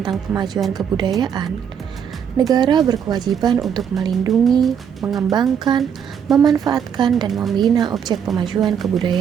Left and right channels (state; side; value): quieter; left; 7.9 dB